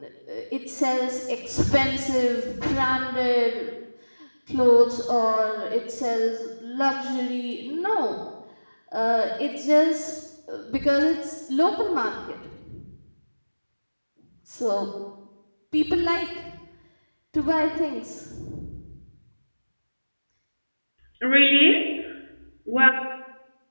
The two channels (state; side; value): inverted; both; correlation -1.00